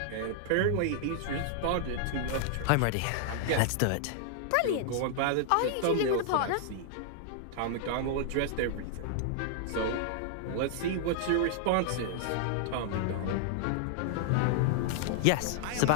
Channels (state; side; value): different; both; correlation -0.01